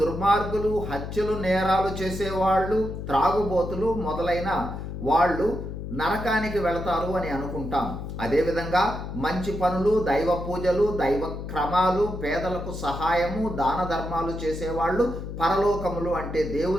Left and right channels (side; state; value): left; noise; hum, 7 dB below the sound